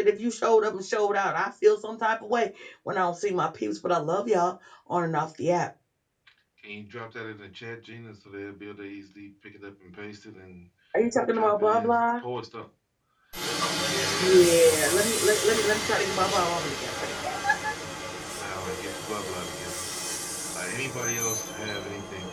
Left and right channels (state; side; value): identical; both; correlation 1.00